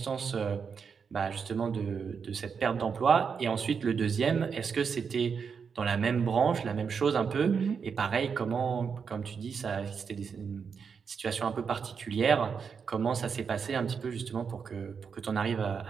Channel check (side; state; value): left; quieter; 6.2 dB